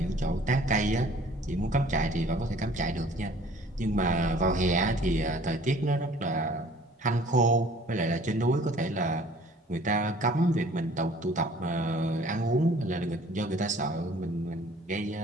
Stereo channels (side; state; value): both; normal; correlation 0.52